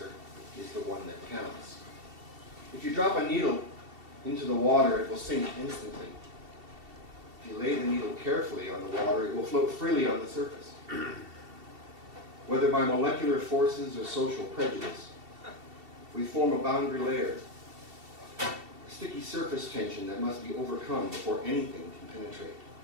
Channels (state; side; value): late; left; 2.7 ms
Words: is the one that counts. If you drop a needle into the water, it will sink instantly. If you lay the needle carefully on the water, it will float freely on the surface. Whether by molecular forces or social prejudice, we form a boundary layer, a sticky surface tension that must be overcome before anything can penetrate.